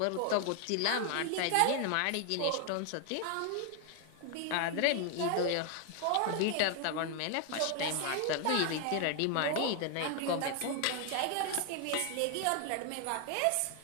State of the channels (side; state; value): both; different; correlation 0.00